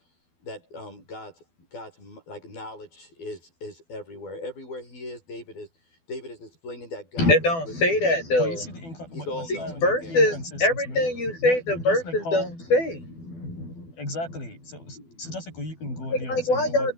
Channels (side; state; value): right; late; 12 ms